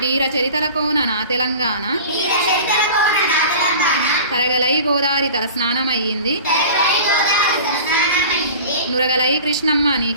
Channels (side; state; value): both; inverted; correlation -0.39